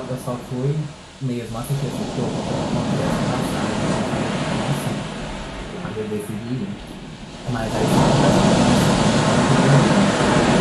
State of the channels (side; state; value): both; identical; correlation 1.00